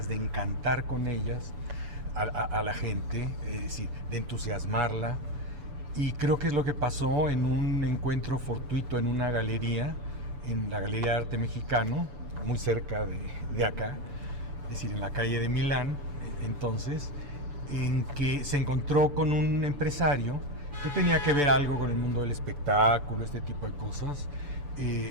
de encantar con ellas a la gente, es decir, de entusiasmarla. Y creo que es lo que pasó en un encuentro fortuito en una galería, en la Galería de Arte Mexicano, muy cerca de acá, es decir, en la calle de Milán, entonces, en que se encontró con un empresario que tenía que ver algo con el mundo del espectáculo, este tipo de cosas.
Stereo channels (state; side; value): late; left; 7.0 ms